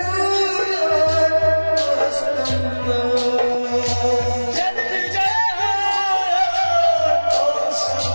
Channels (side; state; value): both; inverted; correlation -1.00